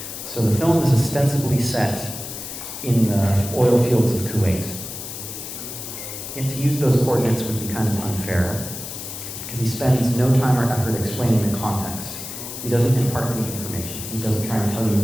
So the film is ostensibly set in the oil fields of Kuwait. And to use those coordinates would be kind of unfair, because he spends no time or effort explaining the context. He doesn't impart any information. He doesn't try and tell you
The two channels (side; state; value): left; noise; hiss, 9 dB below the sound